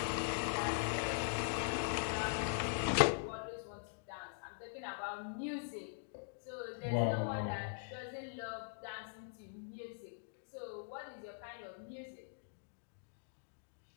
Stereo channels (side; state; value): right; silent; digital silence